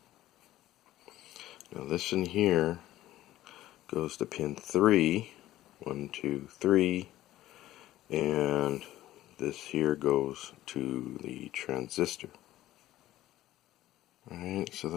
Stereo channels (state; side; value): quieter; right; 14.8 dB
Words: Now this in here goes to pin 3, 1, 2, 3, and this here goes to the transistor. Alright, so